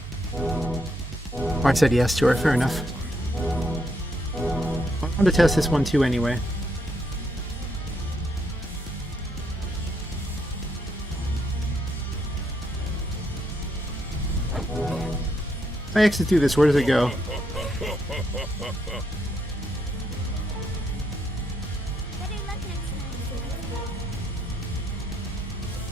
said yes to her. Fair enough. I want to test this one too anyway. If I exit through this, where does it go? Better luck next time, Phil.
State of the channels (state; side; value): normal; both; correlation 0.76